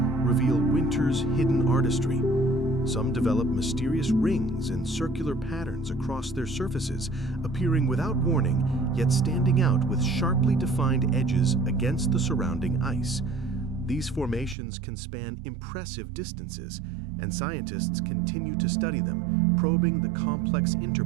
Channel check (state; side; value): drops out; left; at 14.6 s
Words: reveal winter's hidden artistry. Some develop mysterious rings and circular patterns across their surfaces, appearing without warning, yet standing out with sharply defined edges against the surrounding ice. These formations can span impressive distances, and scientists continue to study them, probing the complex